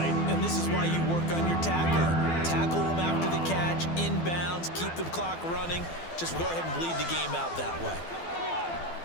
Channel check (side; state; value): right; late; 12 ms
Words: And this is why you work on your tackling. Tackle them after the catch, inbounds, keep the clock running. Just go ahead and bleed the game out that way.